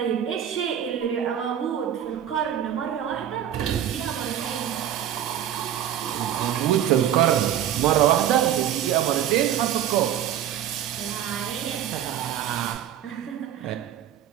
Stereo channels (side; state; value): left; quieter; 10.6 dB